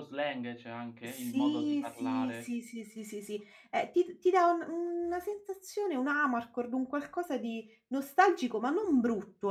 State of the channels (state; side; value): identical; both; correlation 1.00